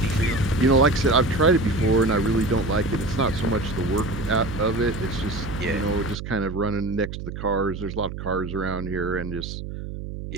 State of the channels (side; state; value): right; noise; hum, 8 dB below the sound